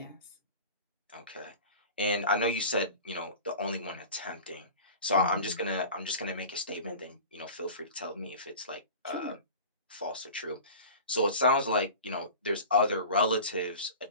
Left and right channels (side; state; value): both; inverted; correlation -0.38